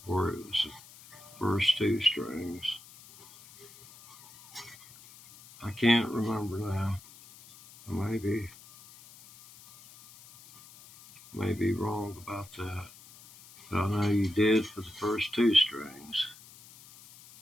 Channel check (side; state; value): left; noise; hiss, 21 dB below the sound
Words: or it was the first 2 strings. I can't remember now. Maybe wrong about that. But I know you did for the first 2 strings.